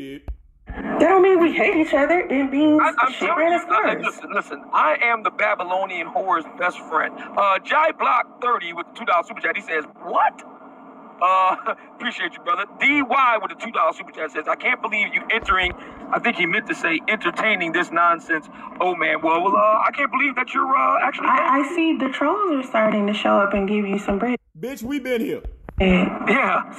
That don't mean we hate each other. It means she ran its course. Listen, I am the Babylonian whore's best friend. Jai Block 30 with the $2 super chat, he says, what? Appreciate you, brother. DY with the $2 super chat says, I can't believe you entering, I think he meant to say entertaining this nonsense. Oh man, well, I can't believe that you're actually. I see the trolls are starting to show up and give you some bread. Bitch, we been here. Yeah.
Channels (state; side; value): identical; both; correlation 1.00